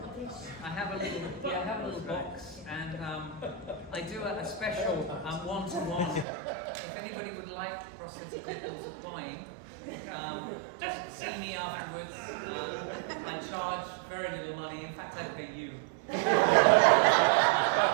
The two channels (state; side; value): drops out; left; at 6.2 s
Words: dish. I have a little box, and I do a special one-to-one. If anybody would like prosthetic nipples applying, just see me afterwards. I charge very little money. In fact, I pay you. If